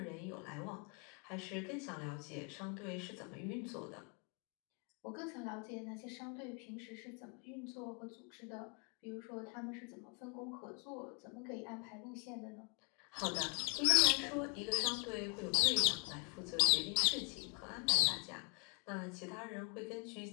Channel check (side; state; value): right; quieter; 38.3 dB